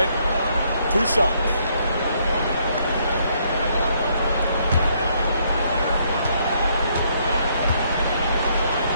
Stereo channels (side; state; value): both; inverted; correlation -0.70